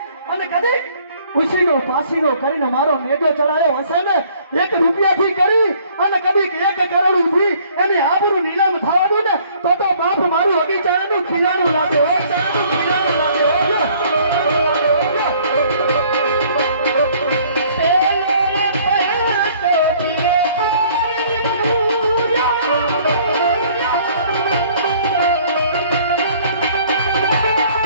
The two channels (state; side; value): inverted; both; correlation -0.58